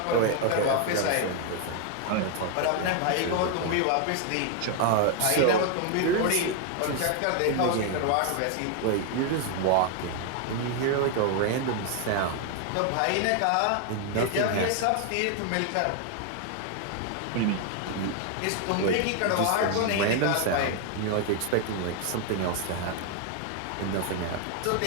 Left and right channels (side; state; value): both; different; correlation 0.00